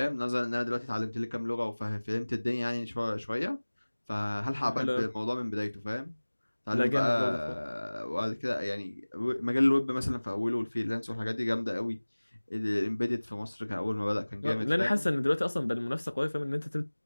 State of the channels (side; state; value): both; inverted; correlation -1.00